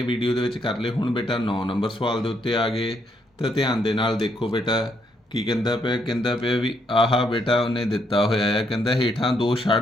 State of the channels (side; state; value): both; normal; correlation 0.74